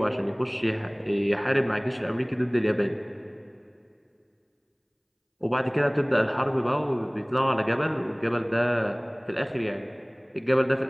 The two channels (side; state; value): both; identical; correlation 1.00